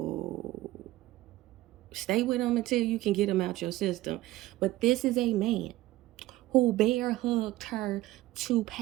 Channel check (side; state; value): left; quieter; 16.6 dB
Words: stay with him until you can get him out your system. But this is a man who bear hugged her to